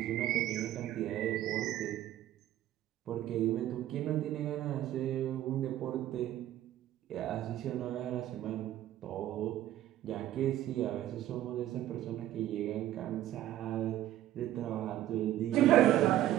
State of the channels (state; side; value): quieter; left; 13.1 dB